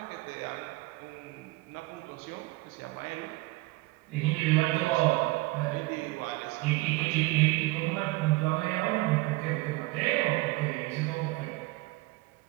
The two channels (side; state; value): left; quieter; 21.3 dB